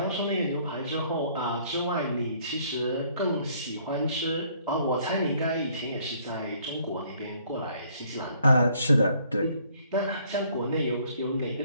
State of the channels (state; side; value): inverted; both; correlation -0.63